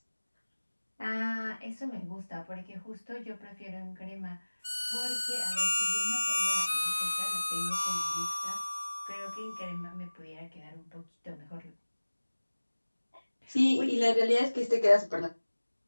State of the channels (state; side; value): inverted; both; correlation -1.00